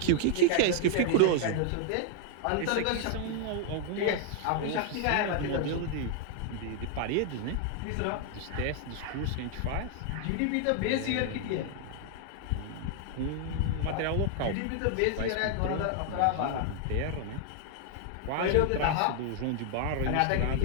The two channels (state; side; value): different; both; correlation 0.00